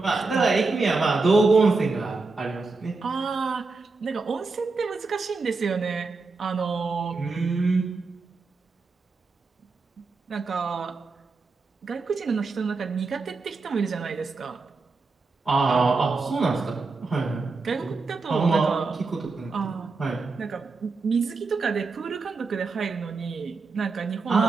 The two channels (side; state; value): left; quieter; 4.0 dB